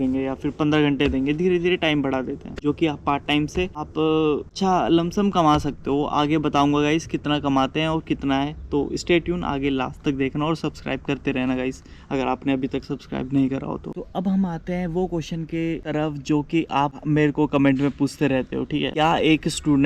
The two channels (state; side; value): identical; both; correlation 1.00